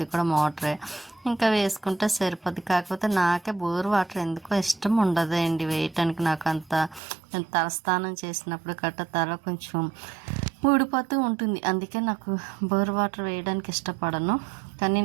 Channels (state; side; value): drops out; left; at 7.0 s